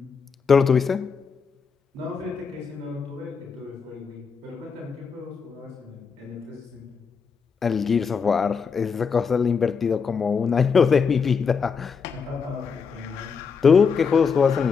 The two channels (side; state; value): right; quieter; 5.8 dB